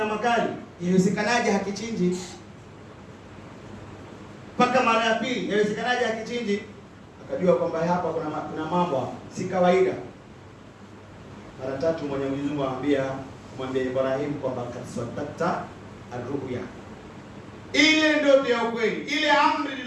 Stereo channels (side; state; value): both; identical; correlation 1.00